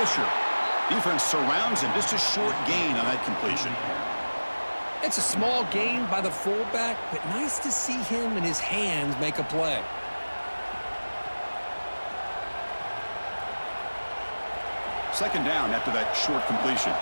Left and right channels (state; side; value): inverted; both; correlation -1.00